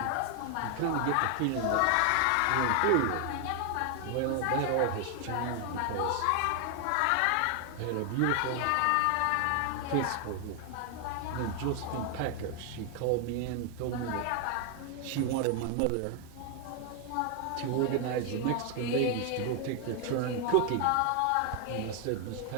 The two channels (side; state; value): both; different; correlation 0.00